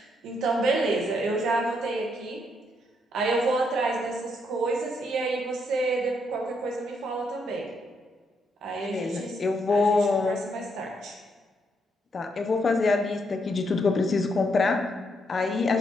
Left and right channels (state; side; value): normal; both; correlation 0.76